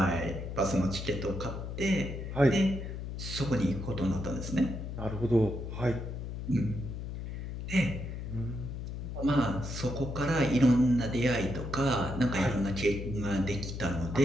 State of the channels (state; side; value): noise; left; hum, 6 dB below the sound